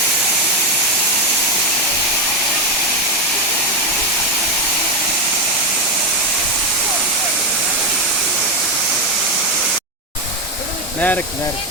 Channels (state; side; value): normal; both; correlation 0.08